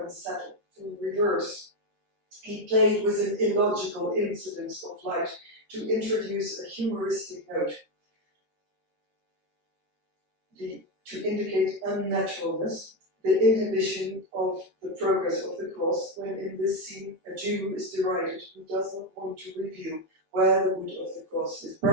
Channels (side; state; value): left; late; 13 ms